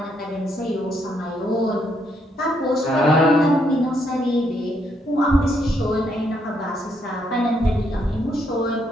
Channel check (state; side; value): normal; both; correlation 0.74